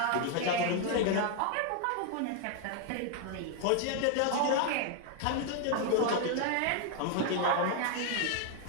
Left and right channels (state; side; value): different; both; correlation 0.00